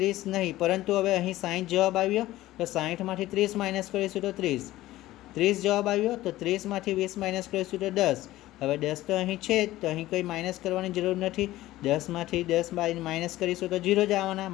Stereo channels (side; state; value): right; quieter; 16.1 dB